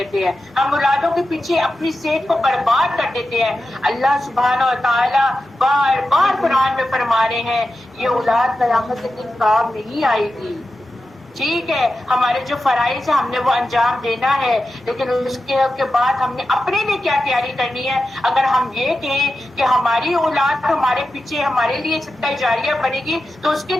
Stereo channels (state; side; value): normal; both; correlation 0.91